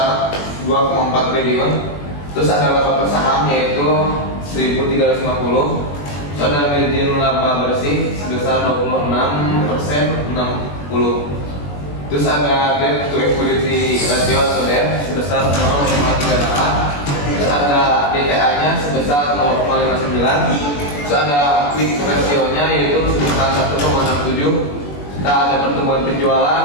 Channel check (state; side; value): late; right; 21 ms